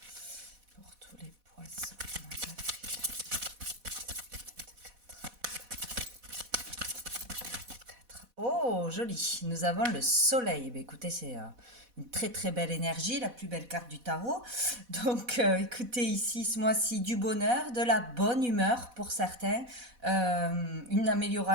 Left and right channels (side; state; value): left; late; 4.1 ms